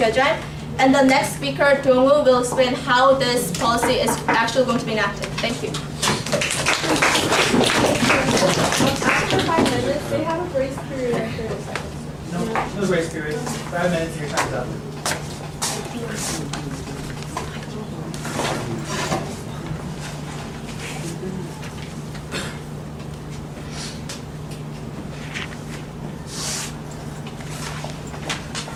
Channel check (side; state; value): both; identical; correlation 1.00